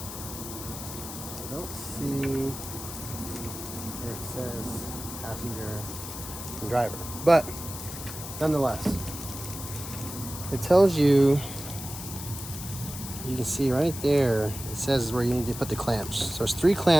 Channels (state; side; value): noise; left; hiss, 10 dB below the sound